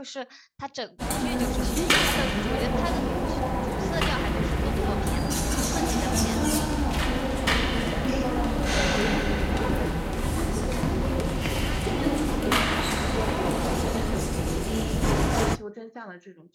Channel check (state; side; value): identical; both; correlation 1.00